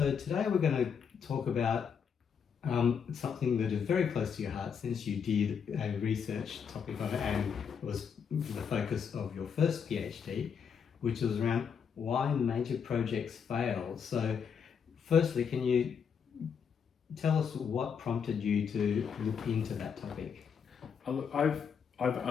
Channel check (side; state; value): right; quieter; 6.9 dB